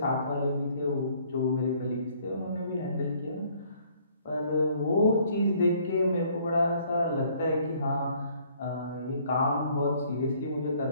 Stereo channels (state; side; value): inverted; both; correlation -0.61